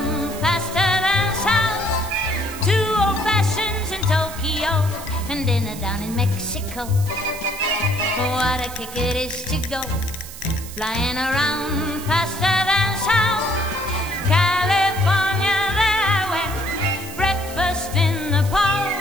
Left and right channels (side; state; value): right; noise; hiss, 13 dB below the sound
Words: faster than sound. 2 old fashions in Tokyo and dinner down in Mexico. What a kick it is to go flying around faster than sound. California, there I went, breakfast in the park.